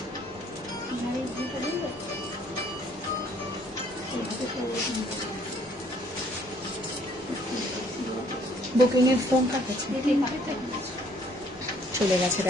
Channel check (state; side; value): normal; both; correlation 0.62